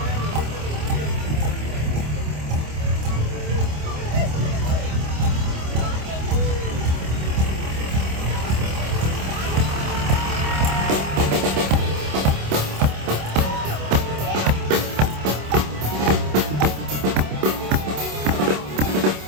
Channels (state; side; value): late; left; 27 ms